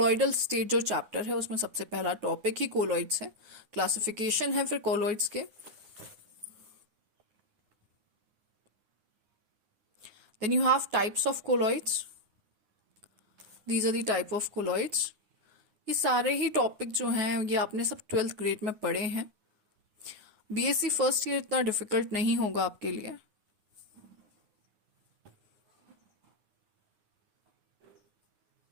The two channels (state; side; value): late; left; 9.7 ms